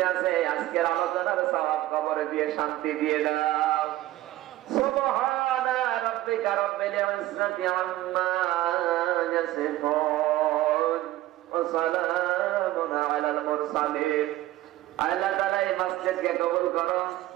আছে আজকের আলোচনার সওয়াব কবরে দিয়ে শান্তি দিয়ে দাও। সুবহানা রাব্বিকা রাব্বিল ইজ্জাতি আম্মা ইয়াসিফুন ওয়া সালামুন আলাল মুরসালিন। আল্লাহ তাআলা এই মসজিদকে কবুল করো,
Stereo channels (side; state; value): left; quieter; 15.6 dB